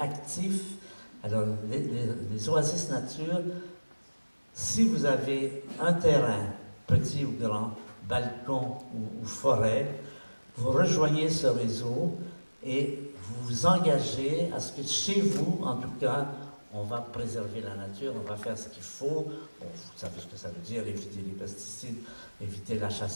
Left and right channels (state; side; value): inverted; both; correlation -1.00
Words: Alors, les Oasis Nature, si vous avez un terrain, petit ou grand, balcon ou forêt, vous rejoignez ce réseau et vous vous engagez à ce que chez vous, en tout cas, on va préserver la nature, on va faire ce qu'il faut. Vous savez ce que ça veut dire, éviter les pesticides, éviter la